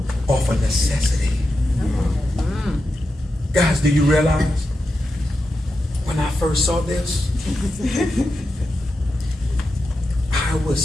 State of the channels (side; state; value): both; normal; correlation 0.89